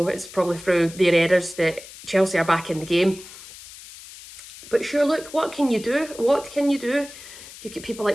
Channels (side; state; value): left; noise; hiss, 16 dB below the sound